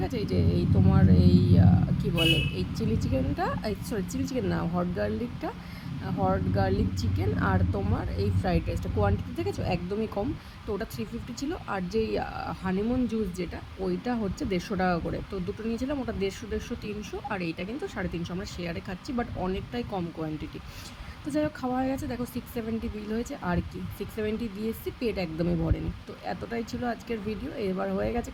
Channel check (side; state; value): both; identical; correlation 1.00